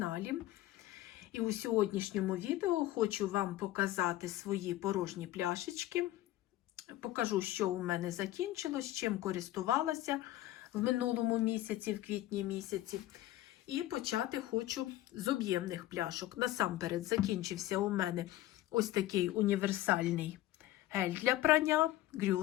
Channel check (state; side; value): quieter; right; 15.1 dB